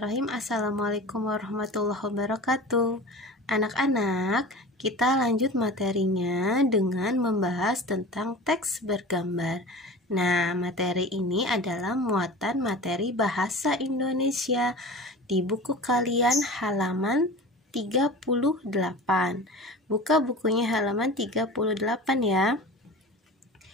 Assalamualaikum warahmatullahi wabarakatuh. Anak-anak, kita lanjut materinya dengan membahas tentang teks bergambar. Nah, materi ini adalah muatan materi bahasa Indonesia di buku kalian halaman 38. Buka bukunya halaman 38 ya.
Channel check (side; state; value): both; normal; correlation 0.36